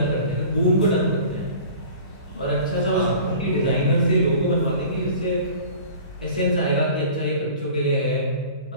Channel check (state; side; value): inverted; both; correlation -0.43